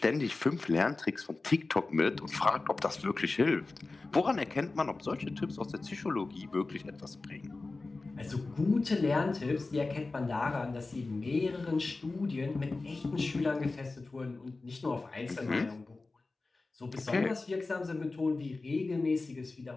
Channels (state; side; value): quieter; right; 3.5 dB